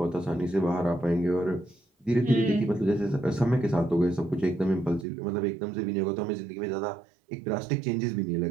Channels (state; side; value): drops out; left; at 5.1 s